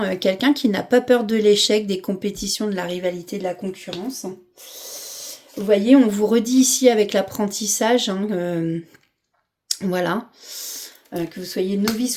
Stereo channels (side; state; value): both; identical; correlation 1.00